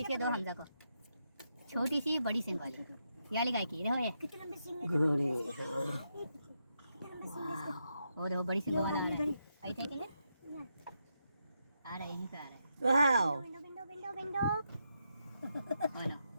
के दो हमजा को। छोटी सी बड़ी सिंग वाली, ये वाली गाय की। देखो ये कितनी लंबी सिंग है। गुड़ी वो देखो बड़ी सिंग वाला आ रहा है। आई थे कि आ रहा है, यहीं पे आ रहा है। वाह window window window window. Oh no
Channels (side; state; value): both; inverted; correlation -0.83